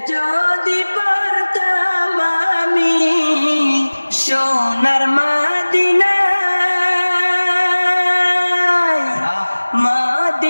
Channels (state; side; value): inverted; both; correlation -1.00